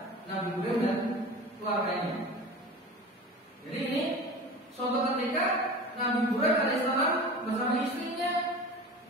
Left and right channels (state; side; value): normal; both; correlation 0.35